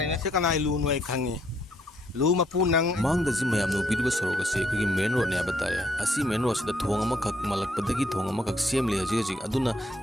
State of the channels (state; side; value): normal; both; correlation 0.70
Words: Sekarang lu nuai kangi. Lu mapu nang mang da jima yam no bidu soro ka se ko main road ne abatare asi main road da thong ama khak malak padagi thong ama khak sem le ji ji aduna